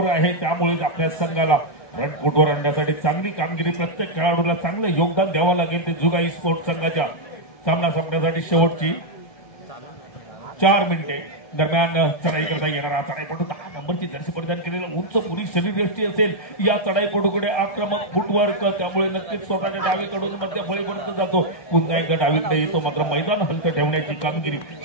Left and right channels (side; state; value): right; late; 1.2 ms